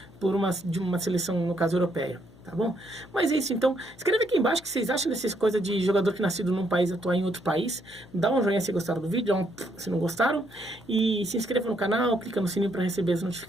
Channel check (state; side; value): noise; left; hum, 24 dB below the sound